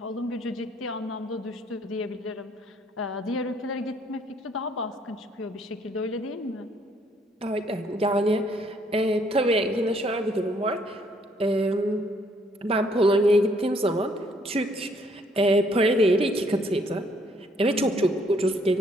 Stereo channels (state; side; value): normal; both; correlation 0.66